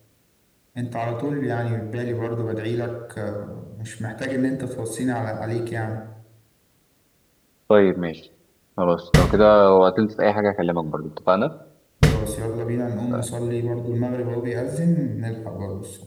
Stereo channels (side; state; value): both; identical; correlation 1.00